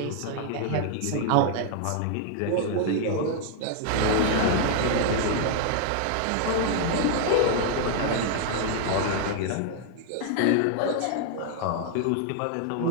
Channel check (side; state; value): both; different; correlation 0.00